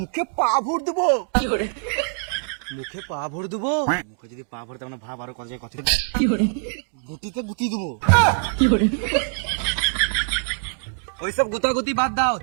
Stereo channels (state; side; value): silent; left; digital silence